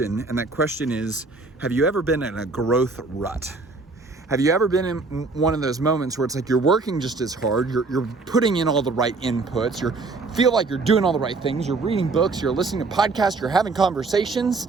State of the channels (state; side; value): quieter; left; 3.8 dB